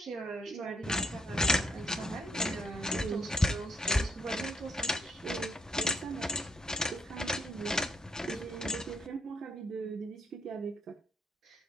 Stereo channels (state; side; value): normal; both; correlation 0.73